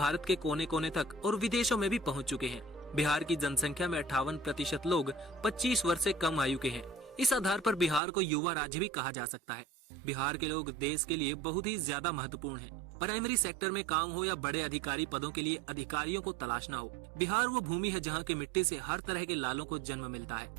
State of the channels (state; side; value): drops out; left; at 8.0 s